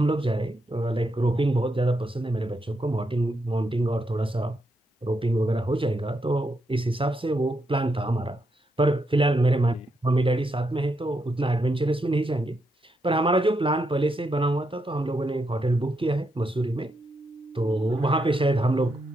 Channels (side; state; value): both; normal; correlation 0.81